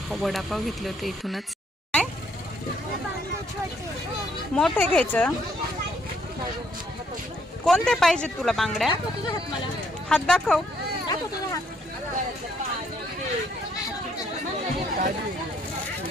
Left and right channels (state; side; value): normal; both; correlation 0.69